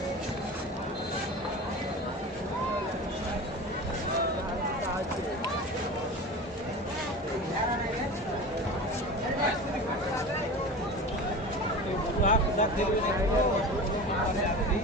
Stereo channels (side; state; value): both; normal; correlation 0.32